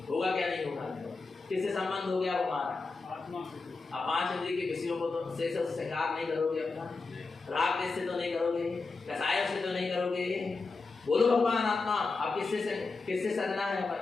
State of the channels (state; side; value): quieter; right; 4.0 dB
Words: होगा क्या नहीं होगा, किससे संबंध हो गया हमारा, आत्मा से। अब पांच इंद्रिय के विषयों को तो से श्रृंगार नहीं करोगे अपना, राग द्वेष से तो नहीं करोगे, कसाय से तो नहीं करोगे। बोलो भगवान आत्मा, अब किससे सजना है अपन